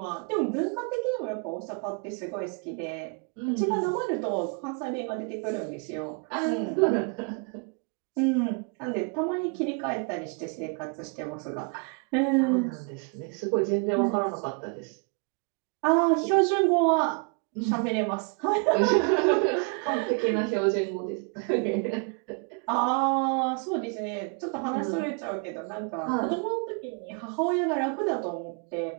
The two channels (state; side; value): quieter; left; 37.6 dB